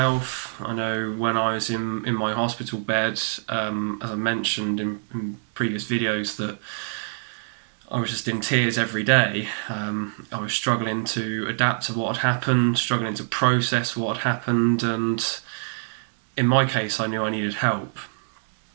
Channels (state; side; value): silent; left; digital silence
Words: I know when I was in my hospital bed, as I mentioned in previous videos, that I was just in tears every day. I was struggling to adapt to what had happened, struggling to process what had happened, and in my case, I knew I needed help.